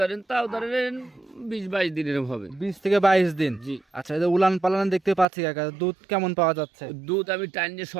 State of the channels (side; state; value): left; drops out; at 5.2 s